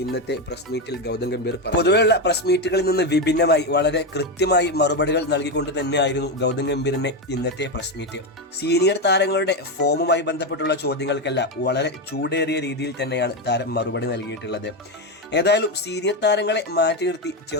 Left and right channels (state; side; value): normal; both; correlation 0.10